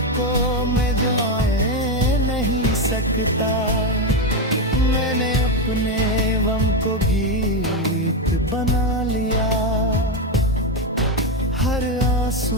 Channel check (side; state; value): both; normal; correlation 0.09